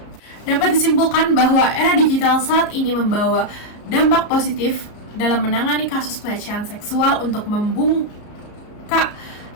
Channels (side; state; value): right; late; 34 ms